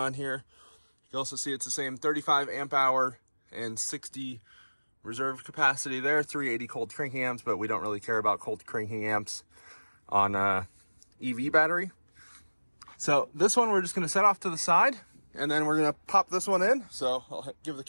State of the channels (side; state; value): both; inverted; correlation -1.00